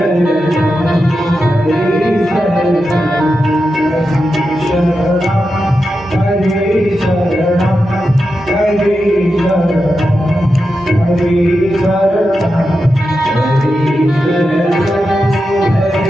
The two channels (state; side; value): normal; both; correlation 0.89